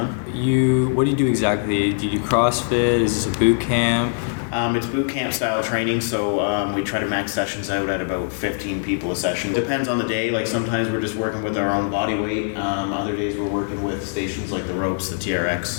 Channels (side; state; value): right; silent; digital silence